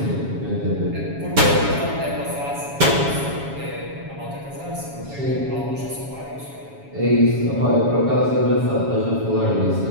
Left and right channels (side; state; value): left; late; 7.2 ms